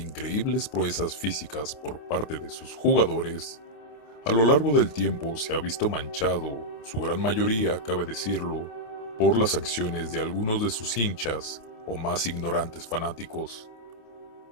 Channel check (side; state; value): right; late; 28 ms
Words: proezas físicas por parte de sus jugadores, a lo largo del tiempo se ha visto manchado, su gran mayoría, cabe decirlo, por las acciones de algunos de sus hinchas o más ignorantes fanáticos.